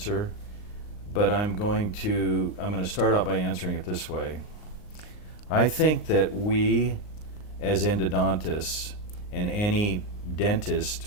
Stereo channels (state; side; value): late; right; 39 ms